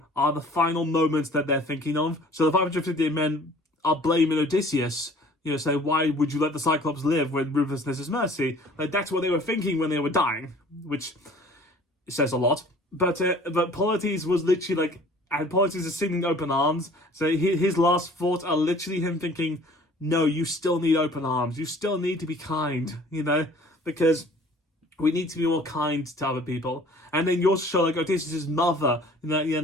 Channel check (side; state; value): both; normal; correlation 0.50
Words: are the final moments that they're thinking of. So the 558 men are blaming Odysseus. Say, why would you let the Cyclops live when ruthlessness is mercy? Like, that's what they were thinking when they were dying, which says a lot. But Polites was literally like, and Polites is singing open arms, so his last thoughts are literally him thinking, no, you still need open arms. You still need to be kind, because we need to be more kind to other people. And then you also show, like, Odysseus' mother, and